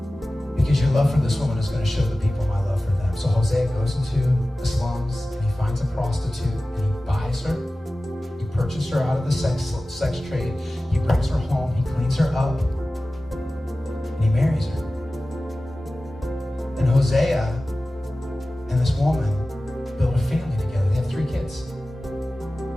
Because your love for this woman is going to show the people my love for them. So Hosea goes into the slums and he finds a prostitute and he buys her. He purchases her out of the sex trade. He brings her home. He cleans her up and he marries her. And Hosea and this woman build a family together. They have 3 kids.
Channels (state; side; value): normal; both; correlation 0.96